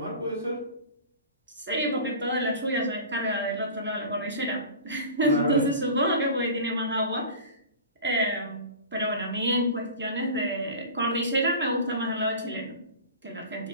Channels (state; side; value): inverted; both; correlation -0.36